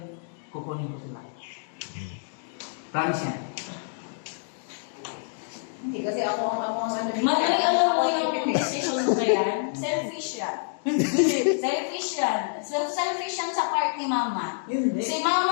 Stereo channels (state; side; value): silent; right; digital silence